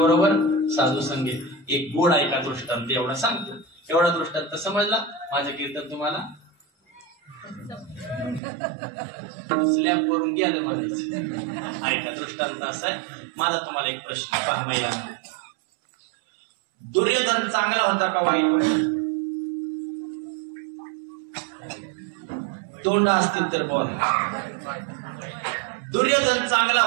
साधू संगे. एक गोड ऐका दृष्टांत एवढा सांगतो. एवढा दृष्टांत समजला? माझं कीर्तन तुम्हाला स्लॅब वरून गेलं म्हणायचं. ऐका दृष्टांत असा आहे. माझा तुम्हाला एक प्रश्न पहा महिलांना. दुर्योधन चांगला होता का वाईट? तोंड असतील तर बोला. दुर्योधन चांगला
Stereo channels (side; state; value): left; drops out; at 8.4 s